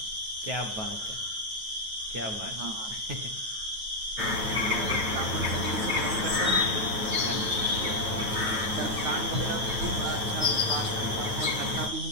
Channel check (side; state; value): left; late; 9.3 ms